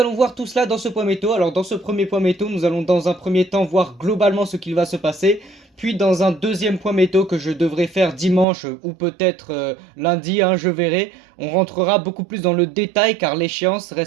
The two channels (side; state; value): left; drops out; at 8.5 s